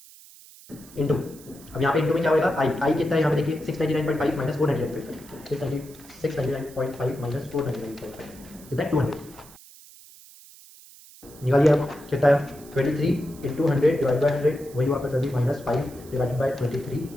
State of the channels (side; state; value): right; noise; hiss, 21 dB below the sound